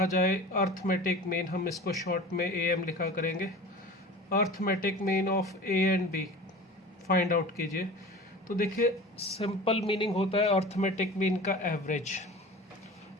जाए अर्थमेटिक मीन, हम इसको शॉर्ट में ए एम लिखा करेंगे। Arithmetic mean of A and B find out कीजिए। तो देखिए सिंपल मीनिंग होता है अर्थमेटिक मीन का एवरेज।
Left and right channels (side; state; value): both; normal; correlation 0.37